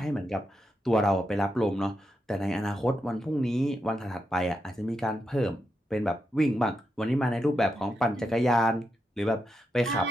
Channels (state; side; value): normal; both; correlation 0.85